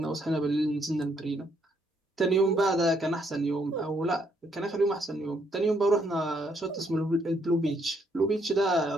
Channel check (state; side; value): normal; both; correlation 0.72